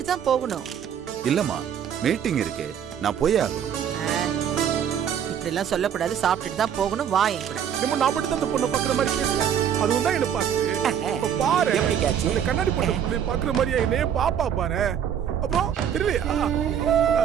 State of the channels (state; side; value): quieter; left; 8.7 dB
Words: தான் போகணும். இல்லம்மா, மீட்டிங் இருக்கு, நான் போய் ஆகணும். இப்படி எல்லாம் சொல்லக்கூடாது. சாப்பிட்டுட்டு தான் போகணும். வா என் கூட. நம்ம நான் மட்டும் தான் பொண்ணை பாக்குற மாதிரி பேசுறேன். அதுவும் தான் என்ன பாக்குது. பாரு எப்படி கேட்சி? இந்த கண்ணாடி போட்ட புள்ளை பாக்குற மாதிரியா என்னையே பாப்பா பாரு. அப்புறம் தெரியலையா